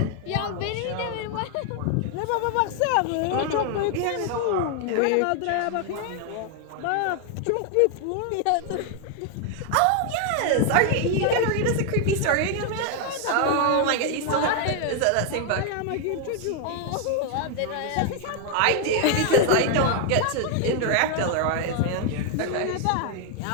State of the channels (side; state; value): both; different; correlation 0.00